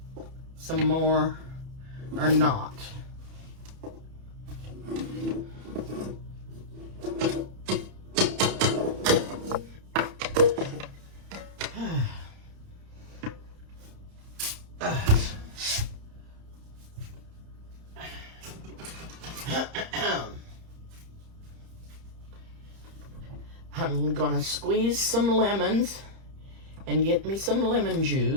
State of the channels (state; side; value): late; left; 30 ms